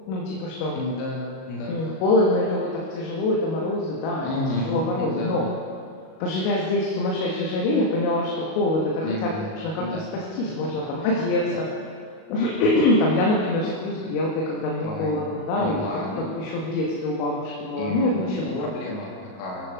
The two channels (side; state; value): right; late; 37 ms